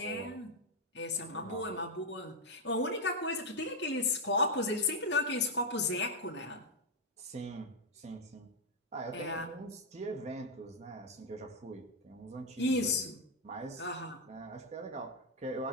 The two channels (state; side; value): normal; both; correlation 0.00